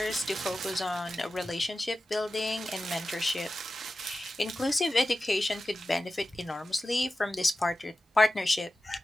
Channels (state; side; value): normal; both; correlation 0.94